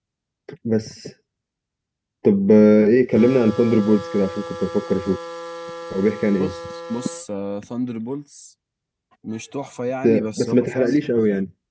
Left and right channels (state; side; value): identical; both; correlation 1.00